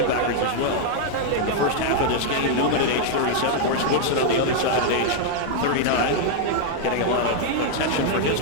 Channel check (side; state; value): both; different; correlation 0.00